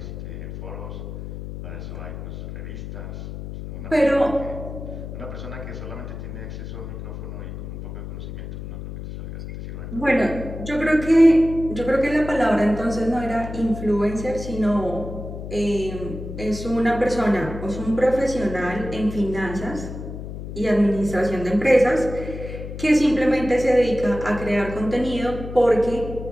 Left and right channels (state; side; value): noise; left; hum, 9 dB below the sound